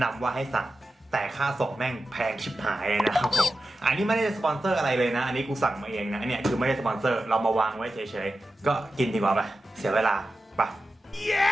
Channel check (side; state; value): both; normal; correlation 0.92